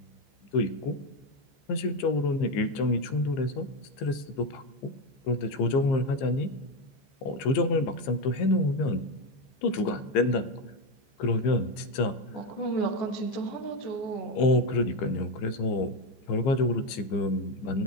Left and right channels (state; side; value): late; right; 14 ms